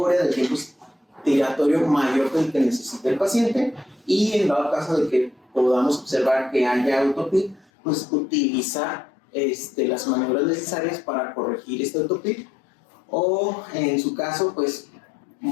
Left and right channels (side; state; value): right; drops out; at 7.7 s